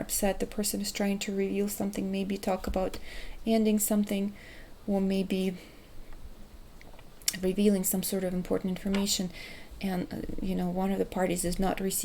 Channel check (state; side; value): identical; both; correlation 1.00